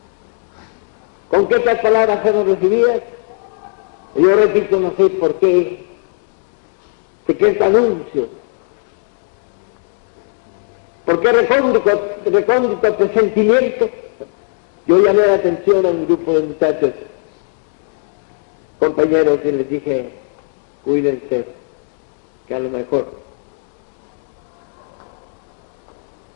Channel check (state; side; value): silent; right; 56 dB below the other